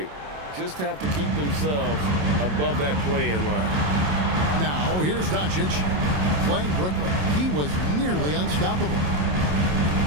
Just have to keep themselves above that play-in line. Now, here's Doncic playing Brooklyn. He was nearly unstoppable.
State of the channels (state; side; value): late; left; 27 ms